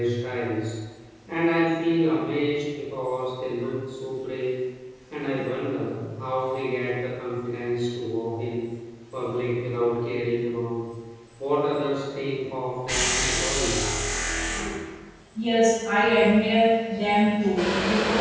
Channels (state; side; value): identical; both; correlation 1.00